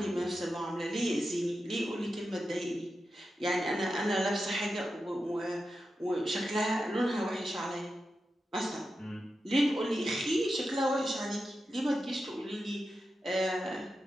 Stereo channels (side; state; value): both; normal; correlation 0.90